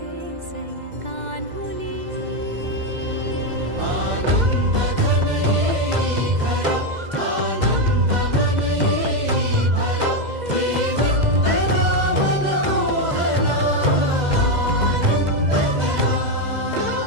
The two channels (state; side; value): late; left; 2.0 ms